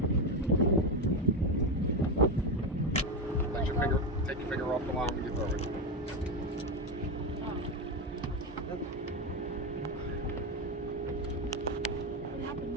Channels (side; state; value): both; normal; correlation 0.12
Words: There you go. Take your finger off the line when you throw it. What happened